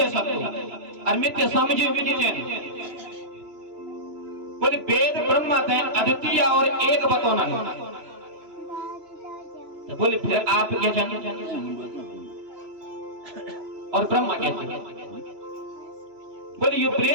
सकते और मिथ्या समझे भी नहीं चाहिए। बोले वेद ब्रह्म है अद्वितीय और एक बतौना है। तो बोले फिर आप क्या जाने और ब्रह्मा कैसे? बोले ये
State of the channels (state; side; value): late; left; 3.0 ms